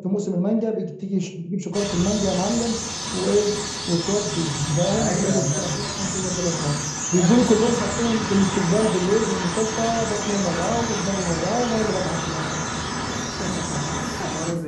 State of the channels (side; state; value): both; identical; correlation 1.00